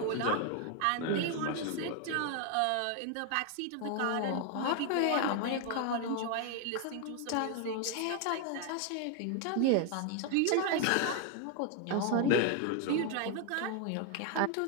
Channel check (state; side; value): different; both; correlation 0.01